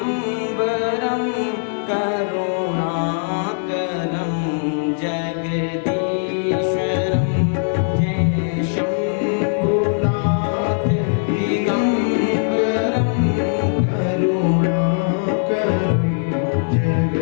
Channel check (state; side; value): silent; right; digital silence